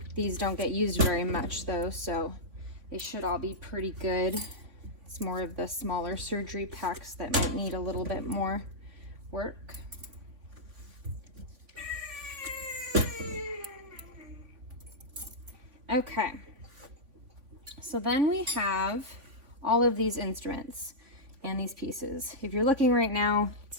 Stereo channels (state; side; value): late; left; 3.5 ms